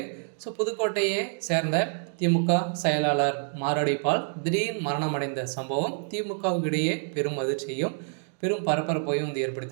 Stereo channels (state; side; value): silent; left; 60 dB below the other